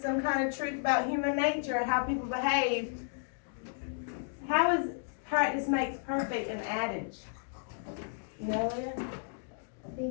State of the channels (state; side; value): silent; right; digital silence